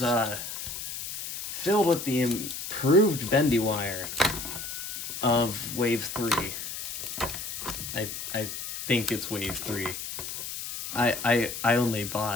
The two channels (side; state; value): left; noise; hiss, 7 dB below the sound